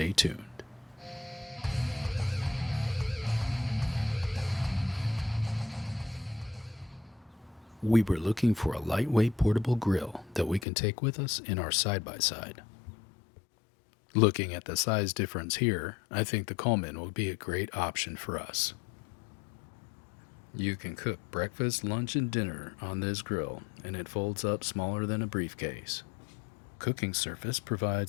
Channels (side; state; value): right; drops out; at 10.7 s